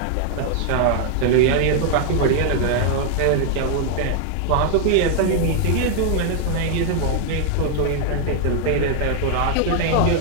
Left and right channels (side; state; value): both; different; correlation 0.00